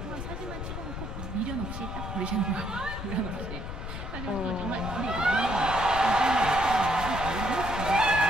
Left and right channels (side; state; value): left; noise; rumble, 7 dB below the sound